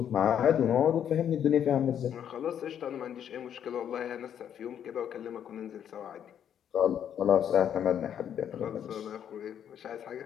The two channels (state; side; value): quieter; right; 9.3 dB